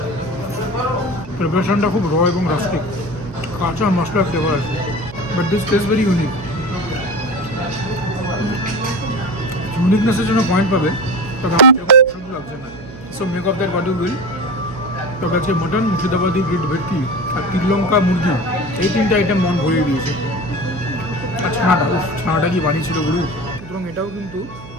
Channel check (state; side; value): noise; right; hum, 16 dB below the sound